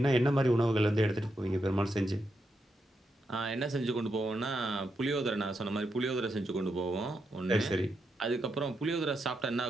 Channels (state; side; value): normal; both; correlation 0.83